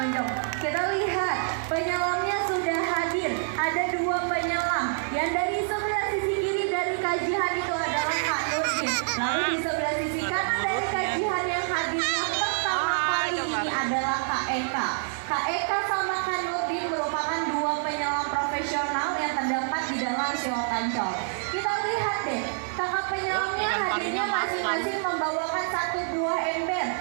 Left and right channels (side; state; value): left; silent; digital silence